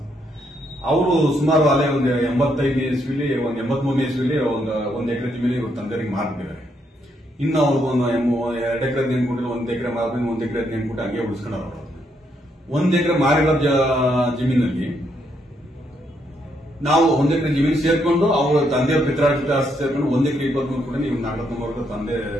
ಅವರು ಸುಮಾರು ಅಲ್ಲೇ ಒಂದು 85ನೇ ಇಸ್ವಿಲಿ, ಒಂದು 83ನೇ ಇಸ್ವಿಲಿ ಒಂದು ಎಕರೆ ಜಮೀನು ಇವ್ರ ತಂದೆಯವರಿಗೆ ಮಾರ್ಬಿಟ್ಟಿದ್ದಾರೆ. ಇನ್ನು ಅವ್ರಿಗೆ 2 ಎಕರೆ ನೆನ್ಕೊಟ್ಟಿಲ್ಲ, 1 ಎಕರೆ ಮಾರ್ಬಿಟ್ಟು 1 ಎಕರೆ ನೆನ್ಕೊಟ್ಟು ಹಂಗೆ ಉಳಿಸ್ಕೊಂಡವ್ರು. 1 ಎಕರೆ ಮಾರಿರೋ ಜಮೀನಲ್ಲಿ ನಾವು 1 ಎಕರೆ ಜಮೀನು ಸೇರ್ಕೊಂಡು ಅವ್ರ ತಂದೆಯವ್ರ ಪಿತ್ರಾರ್ಜಿತ ಆಸ್ತಿ ಸೇರ್ಕೊಂಡು 1 ಎಕರೆ 23 ಕೂಡ ಇವ್ರು ನಾಗರತ್ನವ್ರ ತಂದೆ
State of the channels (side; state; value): both; normal; correlation 0.76